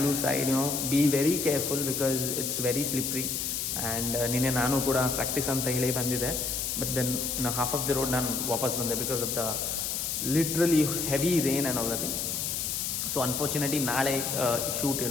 side, be very careful because it's very slippery. And ನಿನ್ನೆ ನಾನು ಕೂಡ ಪ್ರಾಕ್ಟೀಸ್ ಅಂತ ಹೇಳಿ ಬಂದಿದ್ದೆ, but then half of the road ನಾನು ವಾಪಸ್ ಬಂದೆ because of the literally heavy rain and all the thing. So unfortunately ನಾಳೆ ಶೂಟ್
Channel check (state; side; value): noise; left; hiss, 1 dB below the sound